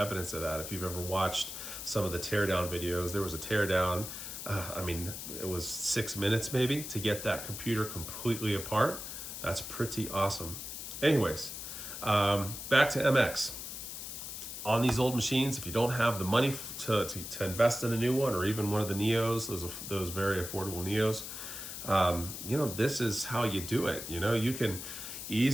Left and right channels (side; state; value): left; noise; hiss, 8 dB below the sound